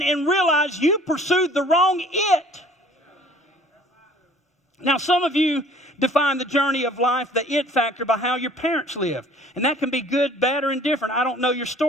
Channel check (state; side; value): normal; both; correlation 0.52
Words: and realize you pursued the wrong it. Now, some of you define the journey of life, the it factor, by how your parents lived. And that can be good, bad, or indifferent. I don't know your